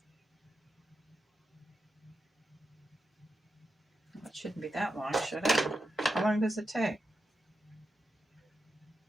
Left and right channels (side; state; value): both; normal; correlation 0.88